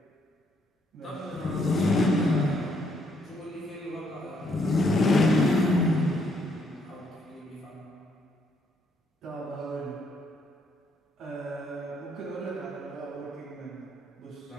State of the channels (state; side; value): normal; both; correlation 0.72